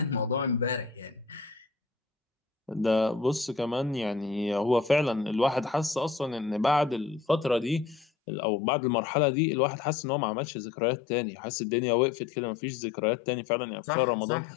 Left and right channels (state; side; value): drops out; right; at 8.1 s